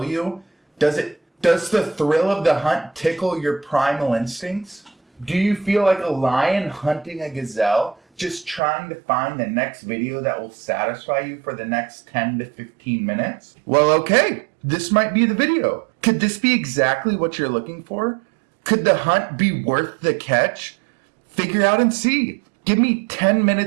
you? Does the thrill of the hunt tickle your primal instincts? Do you feel like a lion hunting a gazelle, just trying to find the next video that will satisfy you for the next 10 to 15 minutes? Well, okay, this might be the video. Could this be exactly what you're looking for? Could the hunt be worth the catch? Figure out and see. Give me 10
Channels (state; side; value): drops out; left; at 8.6 s